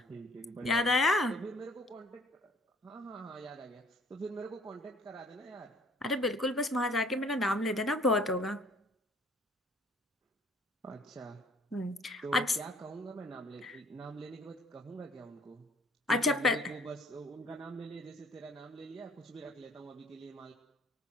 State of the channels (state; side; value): normal; both; correlation 0.57